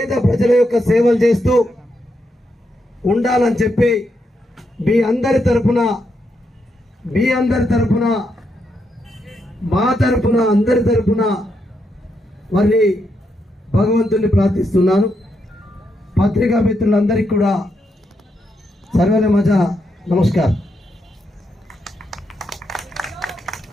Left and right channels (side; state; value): both; normal; correlation 0.81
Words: ప్రజల యొక్క సేవలు చేస్తూ ఉండాలని చెప్పి మీ అందరి తరపున మా తరపున అందరి తరపున మరి భగవంతుని ప్రార్థిస్తున్నాను। पत्रिका मित्रुలందరికీ కూడా सर्वेले माझा नमस्कार।